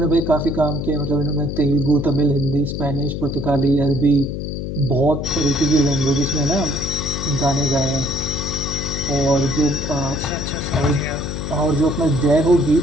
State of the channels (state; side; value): noise; left; hum, 5 dB below the sound